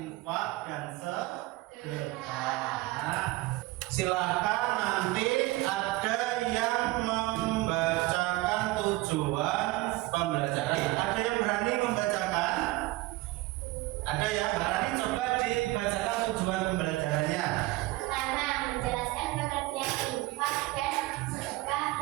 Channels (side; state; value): left; quieter; 19.8 dB